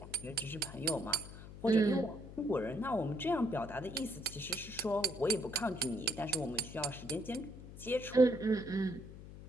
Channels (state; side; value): noise; left; hum, 14 dB below the sound